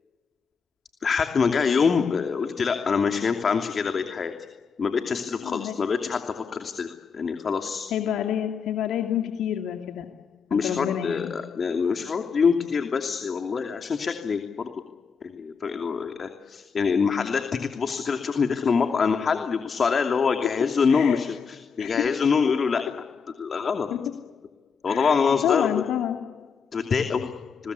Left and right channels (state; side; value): quieter; right; 5.8 dB